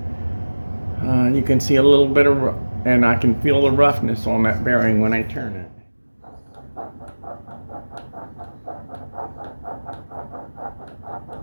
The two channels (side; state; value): both; inverted; correlation -1.00